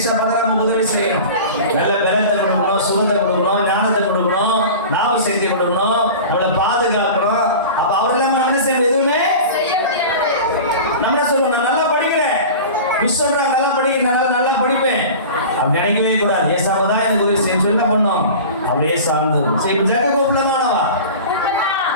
தான் நம்ம உதவி செய்யணும், நல்ல பலத்தை கொடுக்கணும், சுகத்தை கொடுக்கணும், ஞானத்தை கொடுக்கணும், நாம செய்தி கொடுக்கணும், நம்மளை பாதுகாக்கணும். அப்ப அவர் இல்லாம நம்ம என்ன செய்யணும்? எதுவுமே நம்ம சொல்லுவோம், நான் நல்லா படிக்கிறேன், மிஸ் சொல்றாங்க நல்லா படிக்கிறேன், நல்லா படிப்பேன் அப்படி நினைக்கவே கூடாது. ஏசப்பா தான் எனக்கு உதவி செய்ய என்ன பண்ணோம்? அப்படியே சார்ந்தது. சரி, ஜக்க கூப்பிடலாமாவா?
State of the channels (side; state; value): both; inverted; correlation -0.35